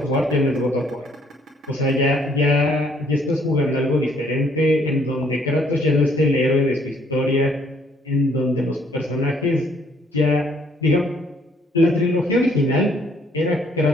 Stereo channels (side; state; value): both; normal; correlation 0.65